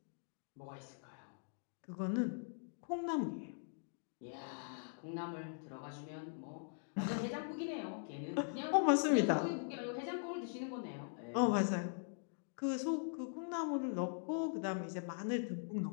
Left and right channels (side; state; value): right; silent; digital silence